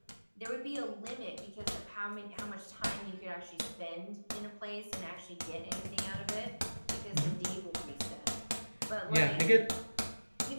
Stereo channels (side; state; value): both; inverted; correlation -1.00